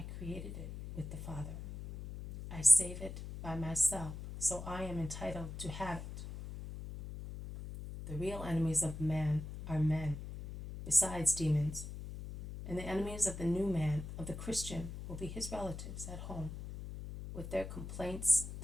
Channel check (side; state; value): left; noise; hum, 9 dB below the sound